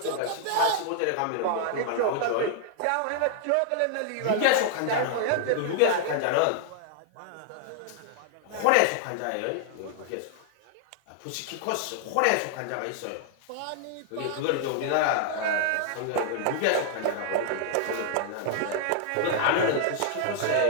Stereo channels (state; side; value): different; both; correlation 0.00